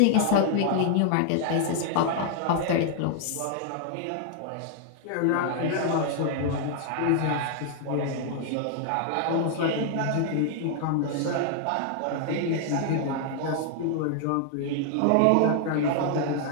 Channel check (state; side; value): different; both; correlation 0.00